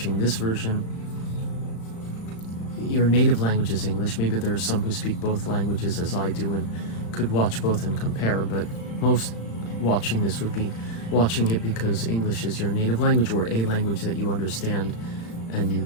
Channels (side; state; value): right; late; 35 ms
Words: this version, your native language is English, maybe there are some who speak both languages as I do and could watch both and compare, but most watching this would be watching it because English is your native language or a language that you understand and you